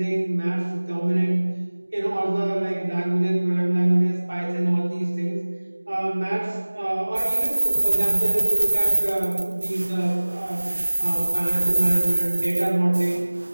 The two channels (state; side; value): inverted; both; correlation -1.00